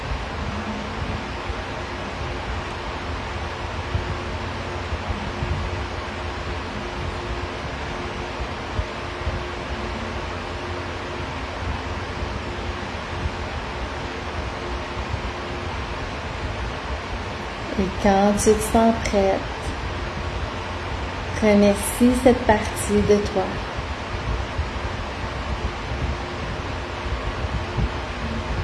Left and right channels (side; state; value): both; identical; correlation 1.00